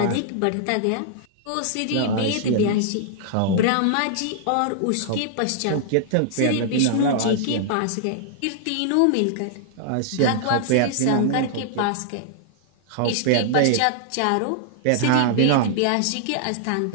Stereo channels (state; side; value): different; both; correlation -0.01